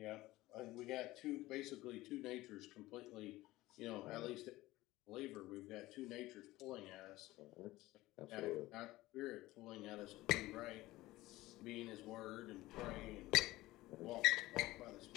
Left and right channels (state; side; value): quieter; right; 17.9 dB